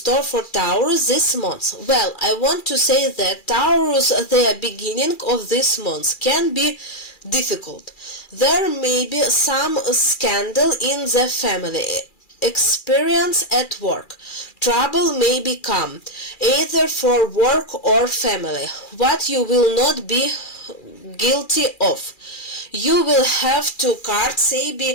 for Taurus this month. Well, I want to say that Taurus, the beginning of this month can be difficult. There may be some scandal in the family. Experience at work. Trouble may become either for work or family, what you will not be guilty of. You will have to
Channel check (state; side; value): late; right; 2.4 ms